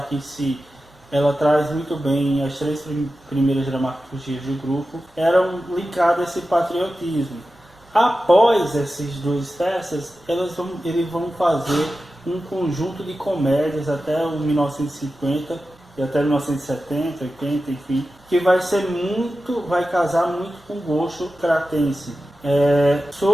em si, ela traz muito bem as três primeiras dramaturgias do grupo, eram linkadas a esse patriotismo. Após essas duas peças, eles vão fazer um conjunto de comédias até o 1950 e até 1970, 80, enfim, que vai casar muito com o gosto cratense.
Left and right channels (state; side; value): normal; both; correlation 0.93